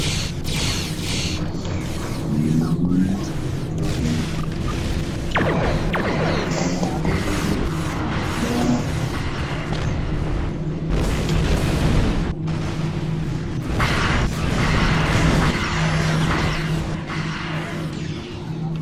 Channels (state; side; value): identical; both; correlation 1.00